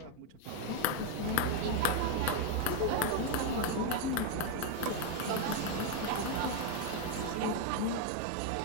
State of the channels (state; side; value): different; both; correlation 0.01